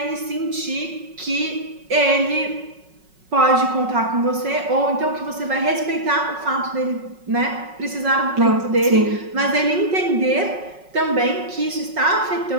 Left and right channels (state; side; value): late; left; 5.4 ms